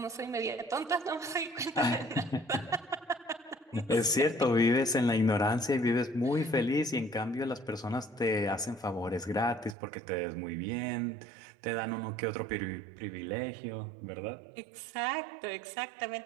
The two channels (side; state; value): left; drops out; at 9.8 s